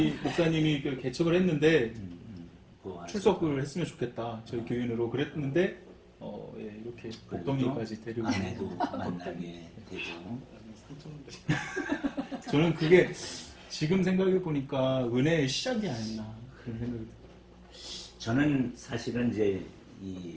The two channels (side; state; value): both; identical; correlation 1.00